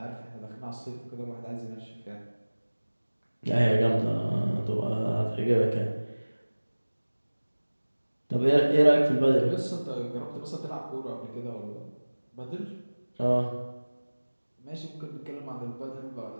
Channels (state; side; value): inverted; both; correlation -1.00